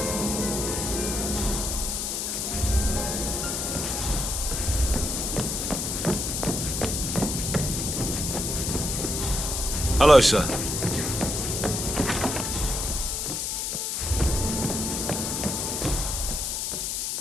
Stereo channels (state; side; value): noise; left; hiss, 1 dB below the sound